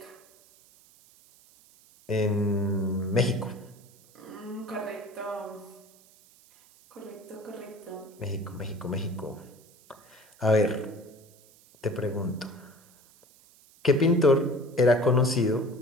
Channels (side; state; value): right; noise; hiss, 27 dB below the sound